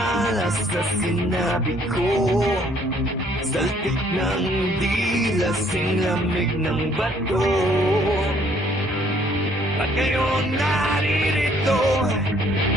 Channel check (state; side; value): normal; both; correlation 0.63